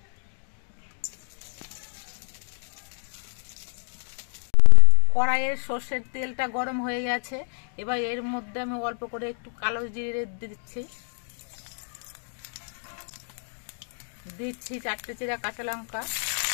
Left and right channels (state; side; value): silent; right; 57 dB below the other